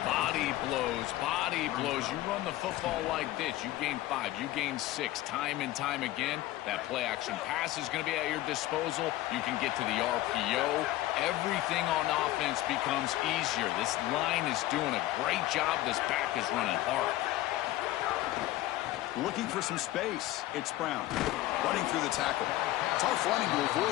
body blows, body blows. You run the football like this, you gain 5, you gain 6, time and time again. That play action pass is going to be at your disposal. You can get to the RPO. Everything on offense becomes easier. This line is doing a great job. This back is running hard. Looking for some space. It's Brown. Running through the tackle. Tough running to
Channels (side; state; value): right; quieter; 16.0 dB